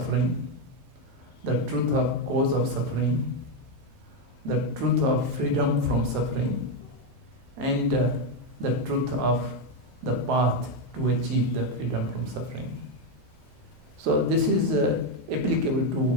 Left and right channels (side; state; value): both; normal; correlation 0.06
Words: the truth of cause of suffering, the truth of freedom from suffering, and the truth of the path to achieve the freedom from suffering. So this is